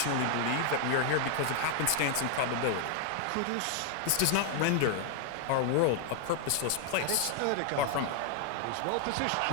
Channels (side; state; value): both; different; correlation 0.00